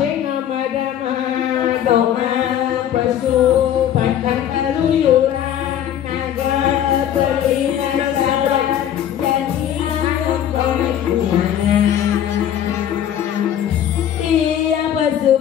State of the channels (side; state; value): right; quieter; 10.3 dB